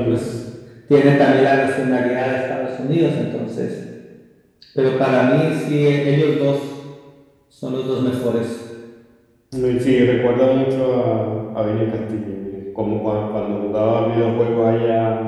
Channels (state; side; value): identical; both; correlation 1.00